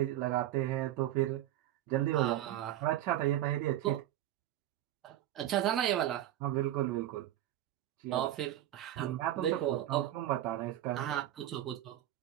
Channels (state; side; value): quieter; left; 13.2 dB